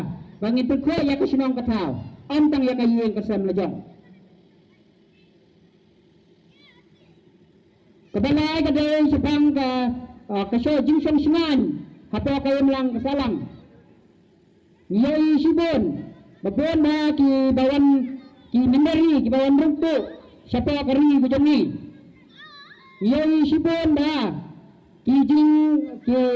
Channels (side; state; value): both; identical; correlation 1.00